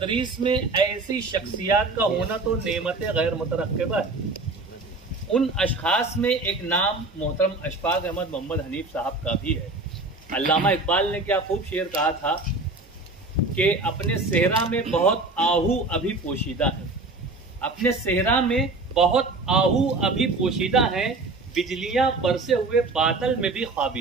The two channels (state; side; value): quieter; left; 3.3 dB